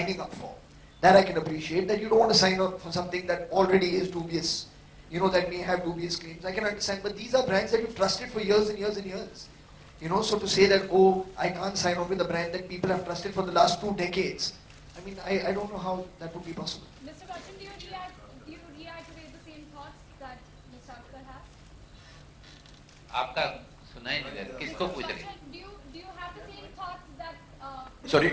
up for. That I can appreciate, that you don't want to sign up for something that already is dubious, that may have dubious claims. I can understand, but these are brands that you've trusted for years and years and years. So to say that, oh, I can't sign on with a brand that people have trusted for the last 2 decades, I don't know how that would be possible. Mr. Bachchan, do you reiterate the same thoughts that Mr. Akhtar has? आपका सुना ही नहीं दे रहा, किसको पूछ रही? Do you have the same thoughts that Sorry,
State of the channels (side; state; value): both; identical; correlation 1.00